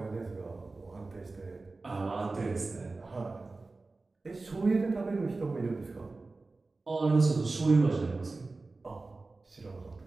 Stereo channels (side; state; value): left; quieter; 3.5 dB